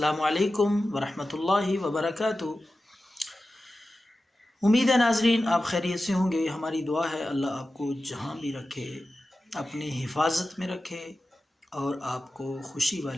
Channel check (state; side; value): normal; both; correlation 0.94